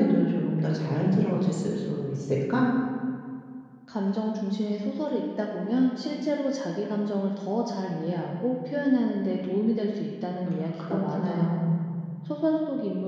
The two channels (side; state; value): both; identical; correlation 1.00